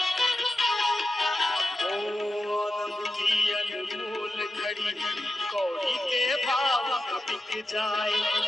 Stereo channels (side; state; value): both; normal; correlation 0.91